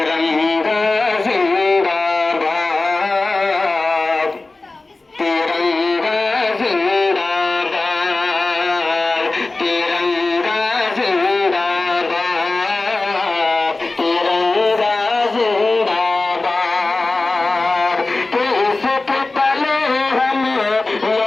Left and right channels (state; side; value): quieter; right; 3.3 dB